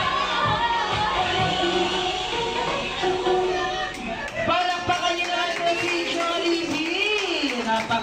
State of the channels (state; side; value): identical; both; correlation 1.00